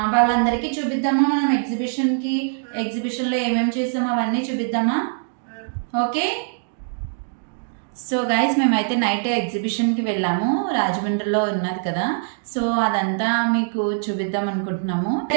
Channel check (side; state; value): left; silent; digital silence